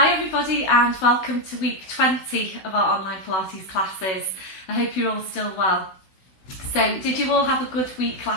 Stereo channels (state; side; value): late; right; 16 ms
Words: everybody and welcome to week 20 of our online Pilates classes. I hope you're all still well. So did you all have a good week